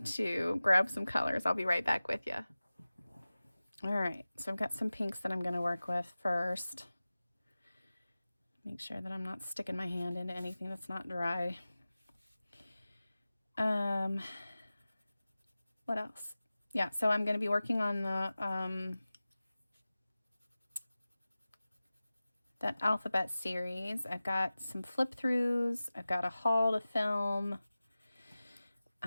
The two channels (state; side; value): inverted; both; correlation -0.97